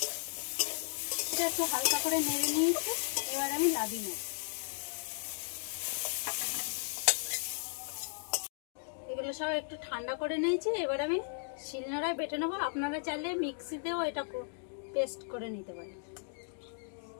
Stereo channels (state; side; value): silent; right; digital silence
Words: এটা একটু হালকা করে নেড়ে নিয়েছি, এবার আমি নামিয়ে নেব। এগুলো ঝিঙে সহ একটু ঠান্ডা করে নিয়েছি। এবার আমি শিলনোড়ায় বেটে নেবো। আপনারা চাইলে মিক্সিতেও এটা পেস্ট করে নিতে পারেন।